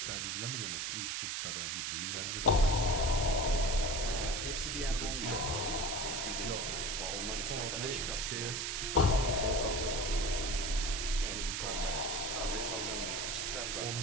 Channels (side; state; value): right; noise; hiss, 1 dB below the sound